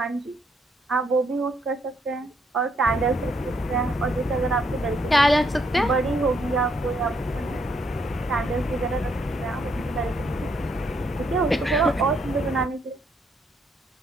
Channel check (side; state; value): both; normal; correlation 0.73